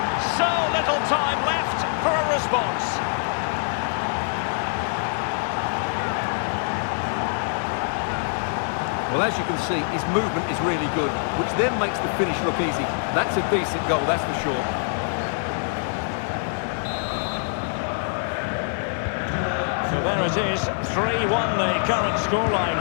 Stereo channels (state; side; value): silent; right; digital silence